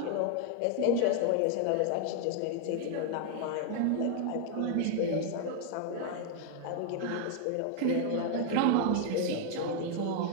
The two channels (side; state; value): both; different; correlation 0.00